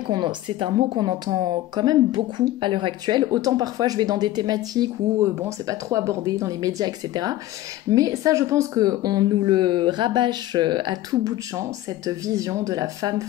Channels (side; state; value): right; quieter; 15.1 dB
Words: c'est un mot qu'on entend quand même beaucoup à l'heure actuelle. Autant parfois je vais dans des thématiques où c'est pas trop abordé dans les médias, etc. Mais ça, je pense qu'on nous le rabâche à tout bout de champ, cette vision de la femme